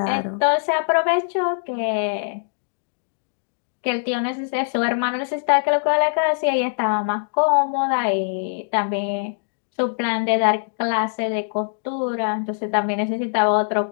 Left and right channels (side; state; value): right; silent; digital silence